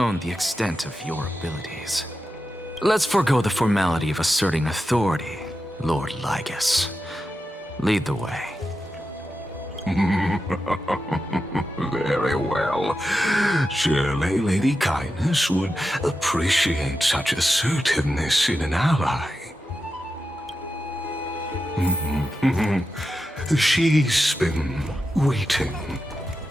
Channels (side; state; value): both; normal; correlation 0.90